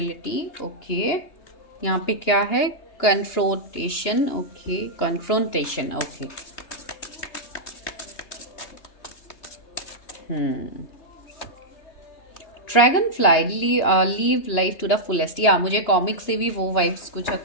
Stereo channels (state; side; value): late; right; 3.3 ms